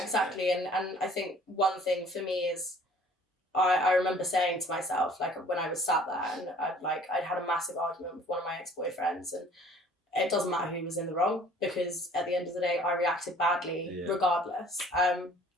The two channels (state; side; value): normal; both; correlation 0.53